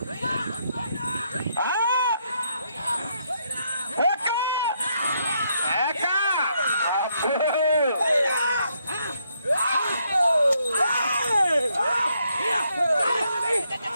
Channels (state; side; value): inverted; both; correlation -0.75